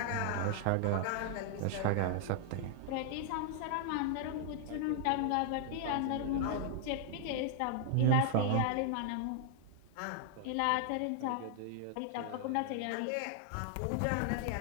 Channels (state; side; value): different; both; correlation 0.00